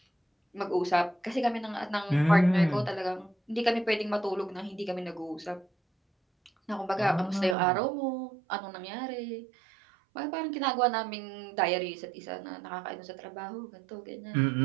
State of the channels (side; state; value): left; drops out; at 7.6 s